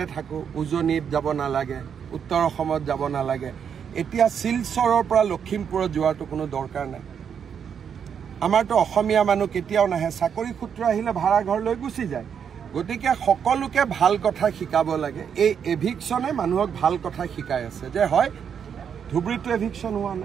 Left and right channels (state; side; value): quieter; left; 7.6 dB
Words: থাকো উজনিত যাব নালাগে উত্তৰ অসমত যাব নালাগে এতিয়া শিলচৰৰ পৰা লখিমপুৰত যোৱাটো কোনো দৰকাৰ নাই আমাৰতো অসমীয়া মানুহ কেতিয়াও নাহে চাকৰি সূত্ৰ আহিলে ভাড়া ঘৰ লৈ গুচি যায় গতিকে সকলোকে ভাল কথা শিকাব লাগে এই এভিকশনে মানুহক ভাল কথা শিকাই আছে যে হয় ধুবুৰীটো এভিকশন হোৱা